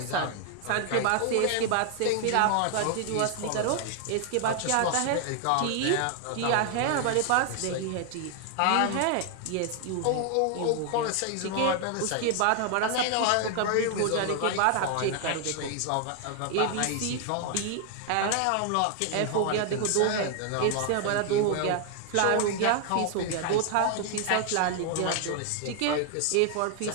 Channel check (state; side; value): different; both; correlation 0.00